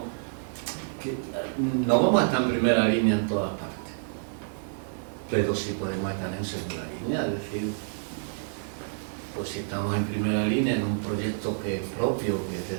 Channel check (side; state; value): left; silent; digital silence